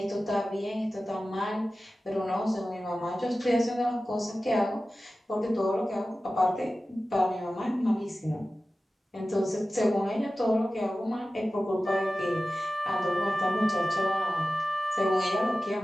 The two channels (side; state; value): both; normal; correlation 0.95